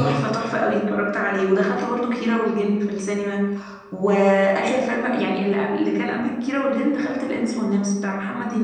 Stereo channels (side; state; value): both; identical; correlation 1.00